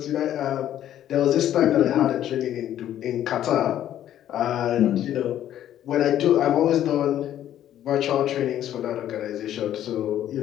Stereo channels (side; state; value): right; quieter; 11.6 dB